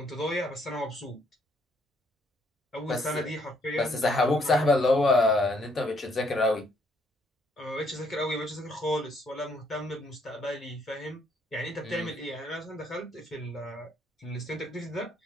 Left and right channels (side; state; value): both; normal; correlation 0.69